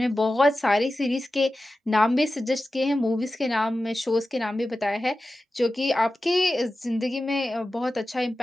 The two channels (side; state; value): both; normal; correlation 0.94